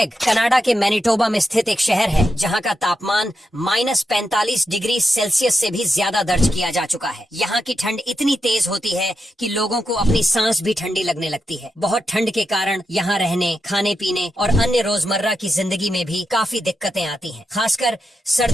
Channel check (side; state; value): both; normal; correlation 0.86